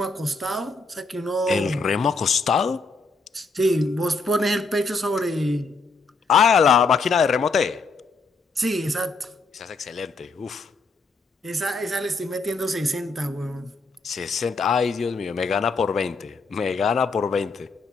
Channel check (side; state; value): right; quieter; 3.9 dB